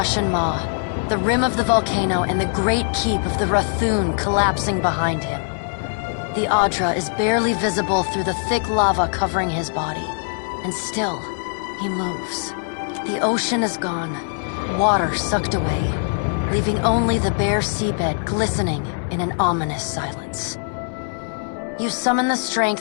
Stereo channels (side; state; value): right; silent; digital silence